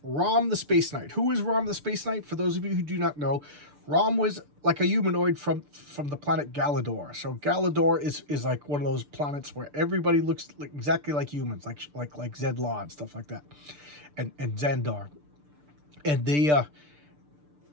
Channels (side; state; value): left; late; 6.8 ms